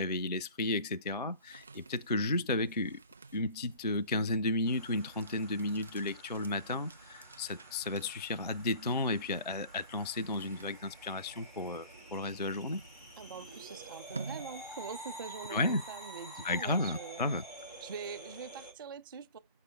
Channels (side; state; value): both; inverted; correlation -0.45